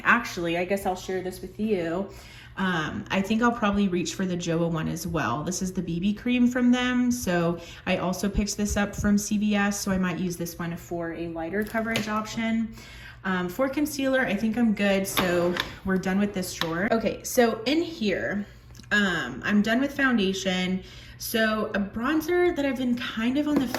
Actually, I guess I'll share this with you. I think I'll probably reach for the JOA one as well. This is the BB cream from them. So I also picked this up from CVS, so I might use this one for a lighter coverage option. For concealer, I think I'm good. So we're done with this drawer. Okay, so in here, I'm done with foundation. So a bronzer that I've been kind of on the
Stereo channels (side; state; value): both; identical; correlation 1.00